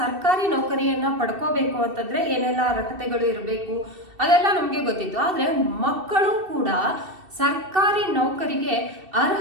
ನೌಕರಿಯನ್ನ ಪಡ್ಕೋಬೇಕು ಅಂತಂದ್ರೆ ಏನೆಲ್ಲ ಅರ್ಹತೆಗಳು ಇರಬೇಕು ಅದೆಲ್ಲ ನಮ್ಗೆ ಗೊತ್ತಿತ್ತು. ಆದ್ರೆ ಮಕ್ಕಳು ಕೂಡ ಸರ್ಕಾರಿ ನೌಕರಿಗೆ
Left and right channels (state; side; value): late; left; 2.7 ms